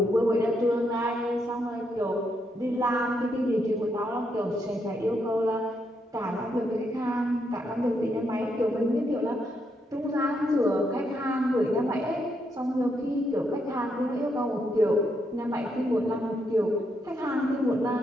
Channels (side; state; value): both; normal; correlation 0.78